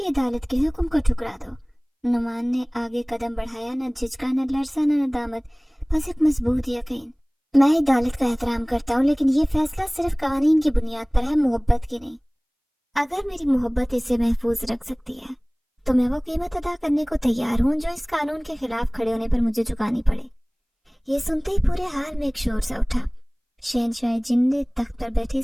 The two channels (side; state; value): both; identical; correlation 1.00